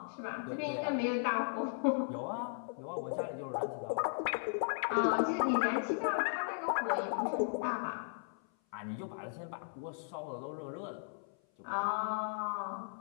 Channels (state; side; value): silent; right; 53 dB below the other